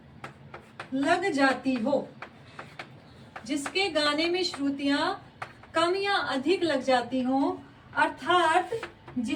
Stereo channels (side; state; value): both; identical; correlation 1.00